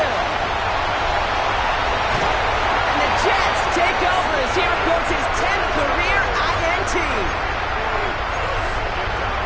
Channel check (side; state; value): both; identical; correlation 1.00